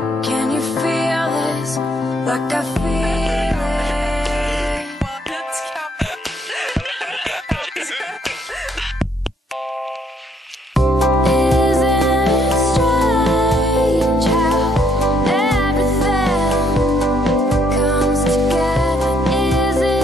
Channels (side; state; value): both; normal; correlation 0.69